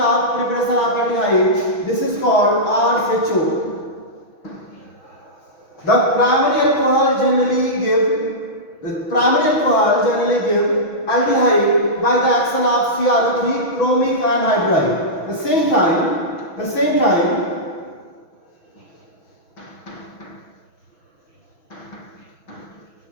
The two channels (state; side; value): late; right; 6.2 ms